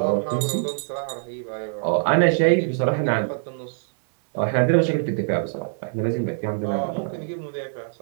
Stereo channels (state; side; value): silent; left; digital silence